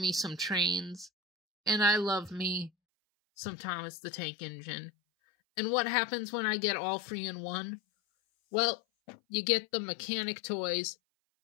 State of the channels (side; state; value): right; drops out; at 2.7 s